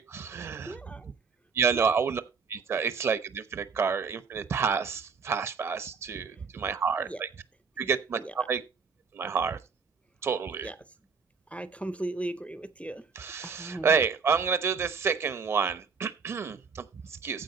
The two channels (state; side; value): quieter; left; 5.5 dB